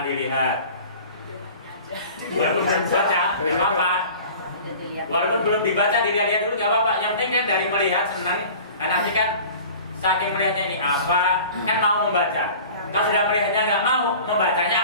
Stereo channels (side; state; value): both; inverted; correlation -0.42